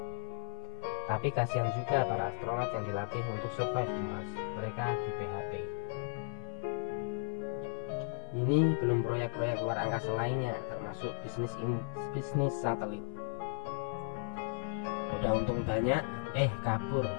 Tapi kasihan juga para astronot yang dilatih untuk survive di Mars. Mereka di PHP. Ini belum proyek-proyek luar angkasa lainnya, termasuk bisnis satelit. Udah untung banyak, kabur.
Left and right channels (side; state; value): right; silent; 54 dB below the other